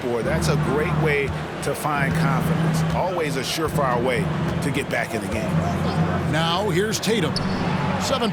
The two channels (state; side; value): identical; both; correlation 1.00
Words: That's a great way to find confidence. Always a surefire way to get back in the game. Now here's Tatum.